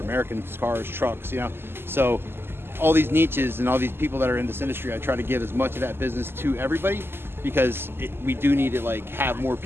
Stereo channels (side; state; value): left; late; 0.11 ms